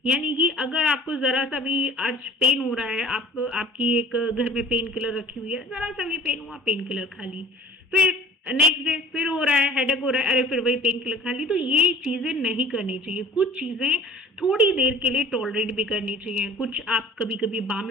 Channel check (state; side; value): normal; both; correlation 0.46